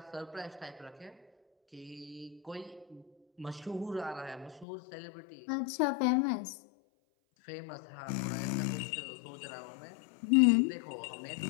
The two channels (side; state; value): right; drops out; at 4.7 s